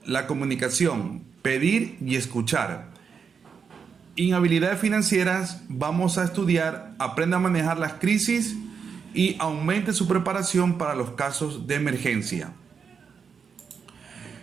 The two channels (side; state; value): left; quieter; 6.2 dB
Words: la comunicación, pedir y escuchar. En habilidades financieras vamos a estudiar, aprenda a manejar las crisis y aumente su preparación para los casos de emergencia.